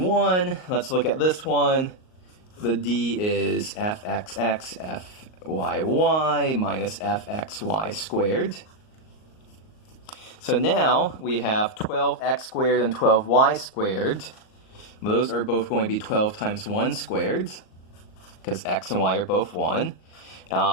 Let's look at this one. The D is fxx, fyy minus fxy squared. So now we have 12x squared and 12y squared. Those are both going to be 12 times 1 squared, because x and y are both 1.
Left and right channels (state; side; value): late; right; 38 ms